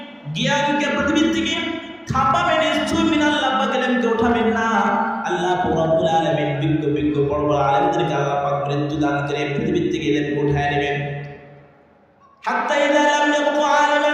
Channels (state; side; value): identical; both; correlation 1.00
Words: জ্ঞানকে পৃথিবী থেকে থাপাবেন, নিশ্চয়ই মিনাল্লাহ পাক ইলমকে উঠাবেন না। আল্লাহ রাব্বুল আলামিন বিজ্ঞ বড় বড় আলেমদেরকে আল্লাহ পাক মৃত্যু দান করে পৃথিবী থেকে ইলমকে উঠায় নেবেন। হাত্তা ইযা লাম ইয়াবকা